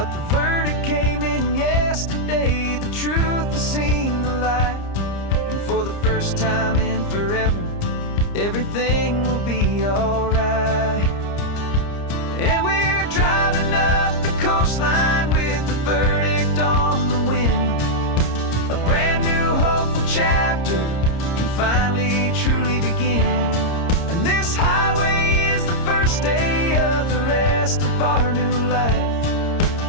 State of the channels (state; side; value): late; right; 30 ms